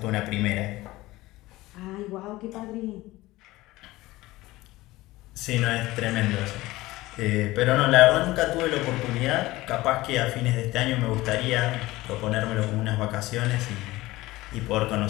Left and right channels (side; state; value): right; quieter; 18.6 dB